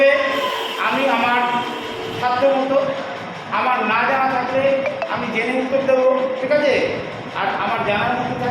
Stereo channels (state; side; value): identical; both; correlation 1.00